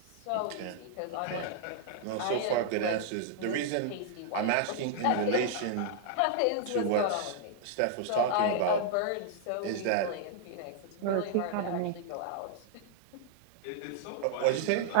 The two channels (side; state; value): both; different; correlation -0.01